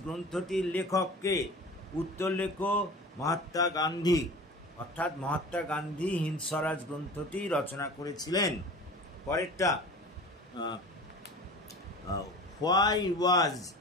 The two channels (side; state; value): both; normal; correlation 0.38